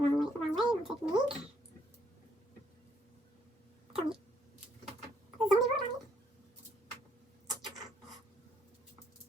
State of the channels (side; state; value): both; normal; correlation 0.69